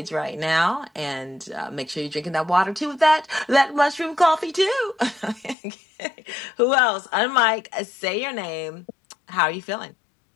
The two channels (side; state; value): right; drops out; at 5.6 s